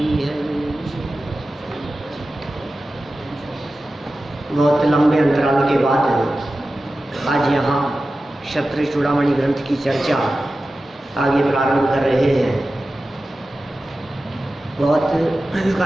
है। बहुत लंबे अंतराल के बाद आज यहाँ क्षत्रिय चूड़ामणि ग्रंथ की चर्चा आगे प्रारंभ कर रहे हैं। बहुत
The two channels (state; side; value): normal; both; correlation 0.94